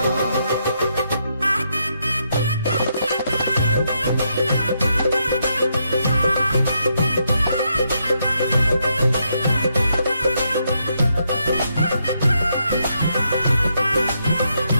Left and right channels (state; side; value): inverted; both; correlation -0.79